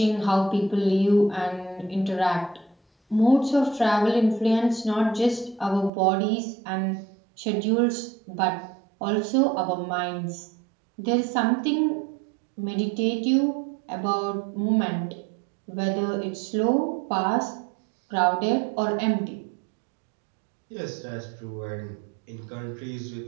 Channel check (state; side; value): drops out; left; at 5.9 s